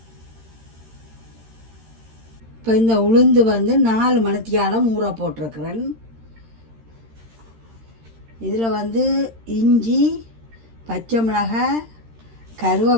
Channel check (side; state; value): left; late; 13 ms